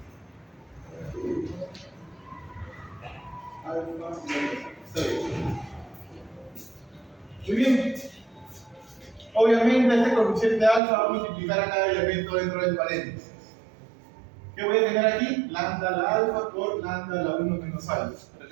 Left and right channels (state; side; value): drops out; left; at 10.8 s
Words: Alfa y 6. Muy bien. Obviamente este coeficiente alfa va a multiplicar a cada elemento dentro del paréntesis. ¿Qué voy a tener aquí? Lambda la alfa por lambda la 1 menos alfa.